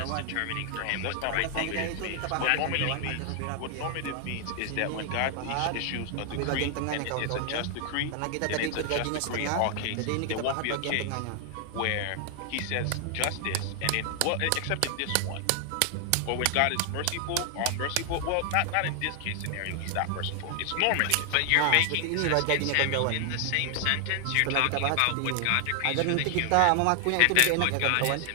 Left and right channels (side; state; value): both; different; correlation 0.00